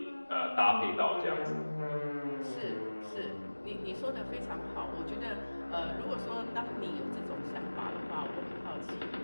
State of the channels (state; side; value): inverted; both; correlation -1.00